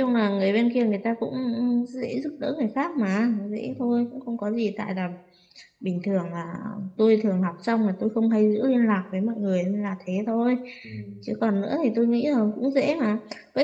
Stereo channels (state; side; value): identical; both; correlation 1.00